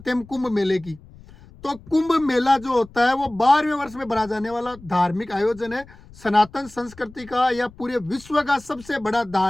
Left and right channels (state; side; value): noise; left; rumble, 22 dB below the sound